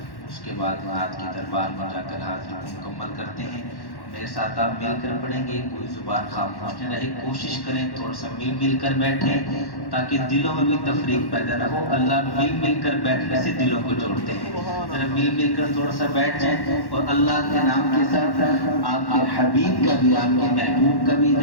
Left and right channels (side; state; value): right; late; 1.1 ms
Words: اس کے بعد نعت کی دربار میں جا کر حاضری مکمل کرتے ہیں۔ میرے ساتھ آپ مل کر پڑھیں گے، کوئی زبان خاموش نہ رہے، کوشش کریں تھوڑا سا مل کر بیٹھیں تاکہ دلوں میں بھی تفریق پیدا نہ ہو۔ اللہ مل کر بیٹھنے سے دلوں کو جوڑتے ہیں۔ ذرا مل کر تھوڑا سا بیٹھ جائیں، اور اللہ کے نام کے ساتھ آپ کے حبیب کا بھی، آپ کے محبوب کا بھی